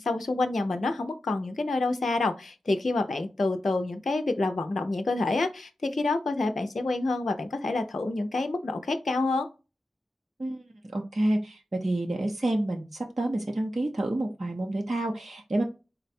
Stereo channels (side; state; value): both; normal; correlation 0.91